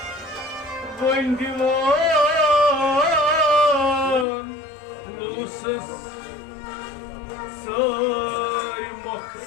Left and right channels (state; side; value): drops out; right; at 4.2 s